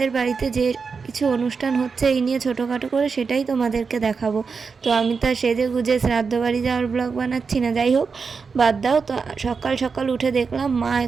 বাড়িতে যে কিছু অনুষ্ঠান হচ্ছে এই নিয়ে ছোটোখাটো করে, সেটাই তোমাদেরকে দেখাবো। তো আমি তো সেজে গুজে শ্রাদ্ধ বাড়ি যাওয়ার ব্লগ বানাচ্ছি না, যাই হোক বাদ দাও। তো সকাল সকাল উঠে দেখলাম মা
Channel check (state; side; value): quieter; left; 5.2 dB